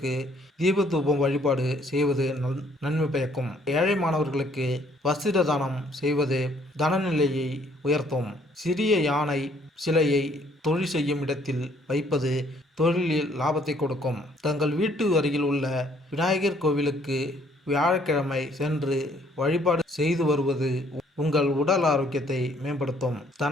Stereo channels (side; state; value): both; normal; correlation 0.63